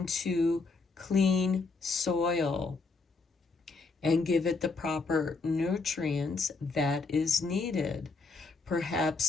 clean soil and give it the proper nutrients that is needed.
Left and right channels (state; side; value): quieter; right; 4.1 dB